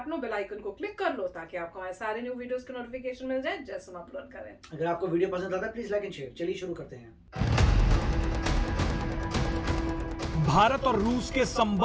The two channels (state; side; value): identical; both; correlation 1.00